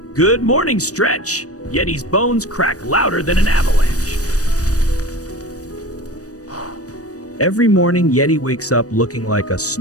Good morning, Stretch. Yeti's bones crack louder than an avalanche. Every morning, Yeti wakes up looking like a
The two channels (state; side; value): late; right; 0.66 ms